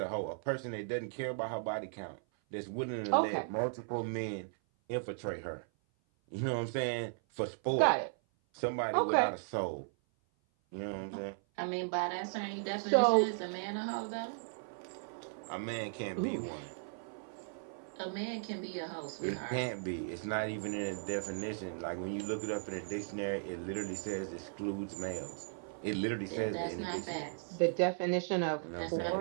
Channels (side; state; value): left; silent; 53 dB below the other